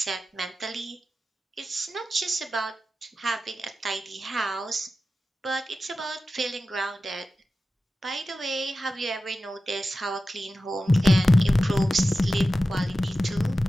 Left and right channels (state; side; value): normal; both; correlation 0.93